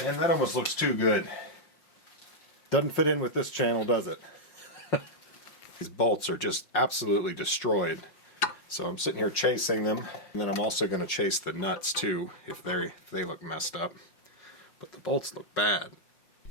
And that almost looks too good. Doesn't fit in with this channel, does it? These bolts are just absolutely destroyed. So I'm sitting here chasing them, and then I'm also going to chase the nuts too if they look messed up. But the bolts look bad.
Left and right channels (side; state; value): right; late; 5.6 ms